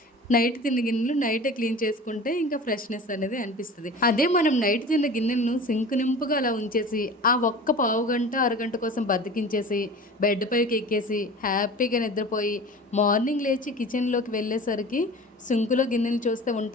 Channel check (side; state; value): both; normal; correlation 0.38